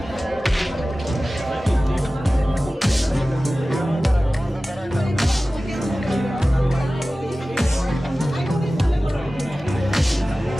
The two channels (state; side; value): normal; both; correlation 0.96